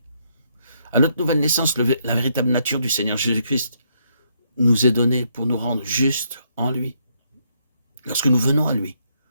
À notre nouvelle naissance, la véritable nature du Seigneur Jésus-Christ nous est donnée pour nous rendre justes en lui. Lorsque nous venons à lui,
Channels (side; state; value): both; inverted; correlation -0.74